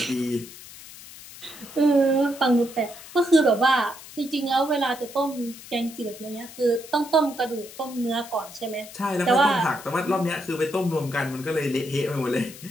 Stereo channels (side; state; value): left; noise; hiss, 16 dB below the sound